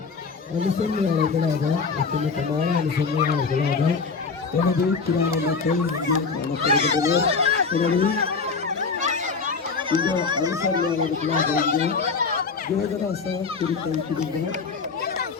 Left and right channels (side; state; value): right; quieter; 4.9 dB